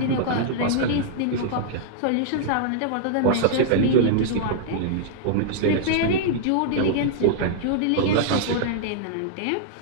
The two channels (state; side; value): different; both; correlation -0.01